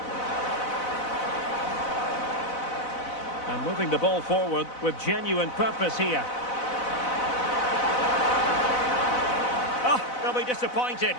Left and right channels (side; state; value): right; late; 4.0 ms